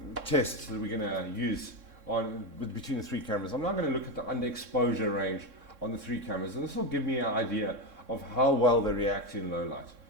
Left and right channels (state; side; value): late; left; 3.6 ms